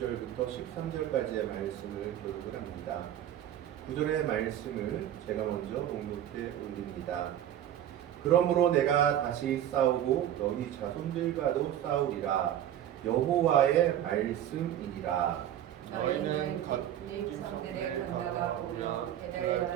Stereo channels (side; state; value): left; quieter; 11.3 dB